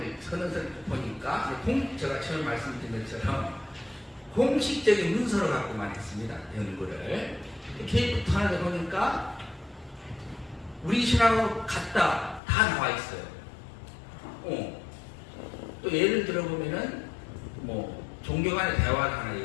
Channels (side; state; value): right; drops out; at 12.4 s